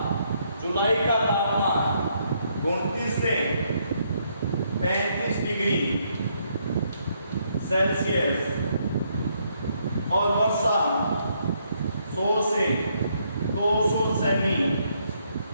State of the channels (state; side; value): inverted; both; correlation -0.73